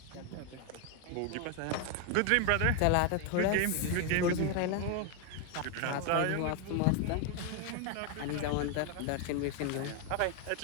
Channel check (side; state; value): both; different; correlation 0.01